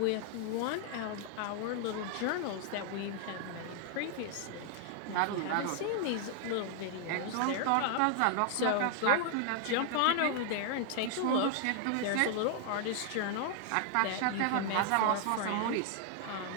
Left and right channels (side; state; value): both; different; correlation 0.00